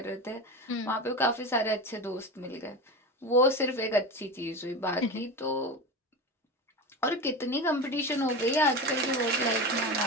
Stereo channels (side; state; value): both; normal; correlation 0.24